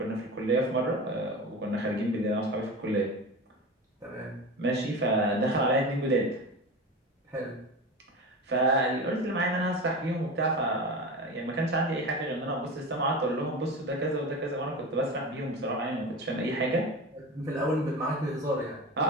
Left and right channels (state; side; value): normal; both; correlation 0.28